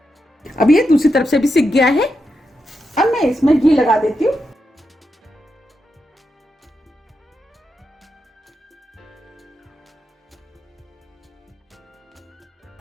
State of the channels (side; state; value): both; normal; correlation 0.86